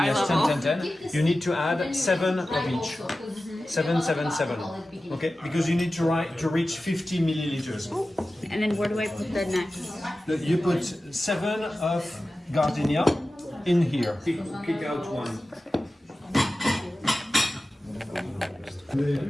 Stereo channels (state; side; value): normal; both; correlation 0.95